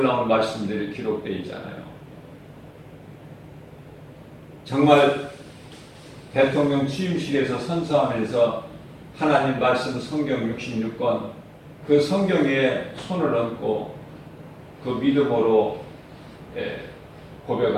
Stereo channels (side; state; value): both; identical; correlation 1.00